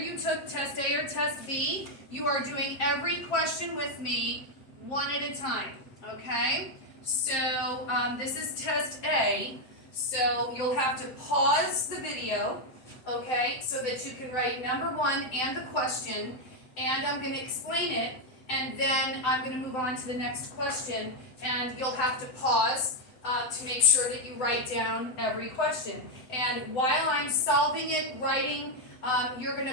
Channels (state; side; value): late; right; 7.9 ms